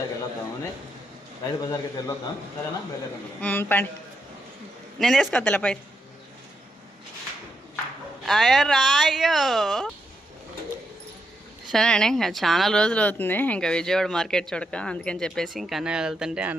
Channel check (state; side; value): normal; both; correlation 0.82